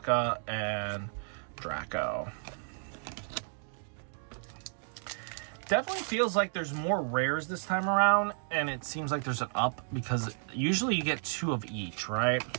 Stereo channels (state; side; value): silent; left; 56 dB below the other